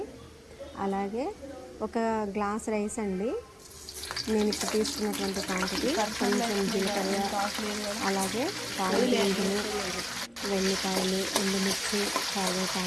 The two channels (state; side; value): identical; both; correlation 1.00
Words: అలాగే ఒక గ్లాస్ రైస్ అండి, నేను ఇప్పుడు తీసుకున్నటువంటి క్వాంటిటీ. కొంచెం జీలకర్ర, అలాగే తాలింపు గింజలు, వెల్లిపాయలు, ఎండుమిర్చి,